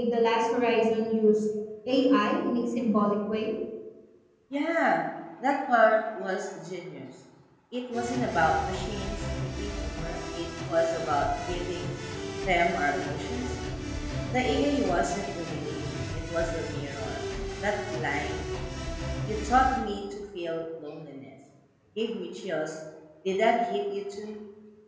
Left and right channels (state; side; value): identical; both; correlation 1.00